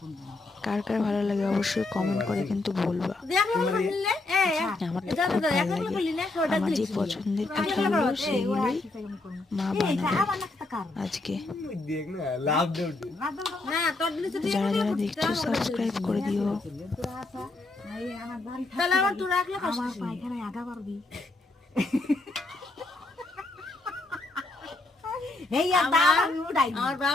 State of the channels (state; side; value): quieter; right; 3.1 dB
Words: কার কার ভালো লাগে অবশ্যই কমেন্ট করে কিন্তু বলবা। আমার তো খুব ভালো লাগে। আমার যে পছন্দের পিঠাগুলো সেগুলোই মা বানাবে আজকে। যারা যারা দেখছো সাবস্ক্রাইব করে দিও। আমার